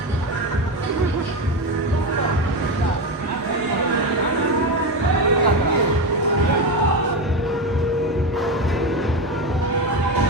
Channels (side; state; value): both; normal; correlation 0.16